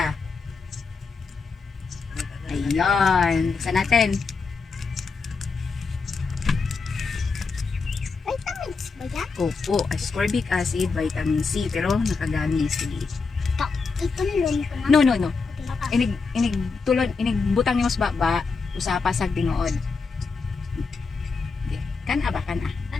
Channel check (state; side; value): quieter; right; 4.6 dB